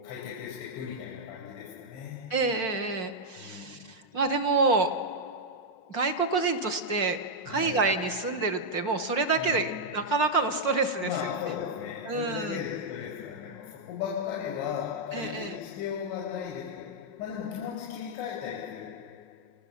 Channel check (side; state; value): right; late; 5.6 ms